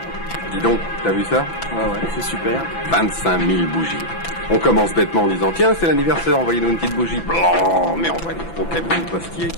Dis donc, t'as vu ça? Ouais, c'est super. 25 000 bougies. On commence bêtement en disant, tiens, c'est l'anniversaire, envoyez-nous une petite bougie. Blanc, mais on voit des gros camions postiers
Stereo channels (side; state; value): right; late; 6.0 ms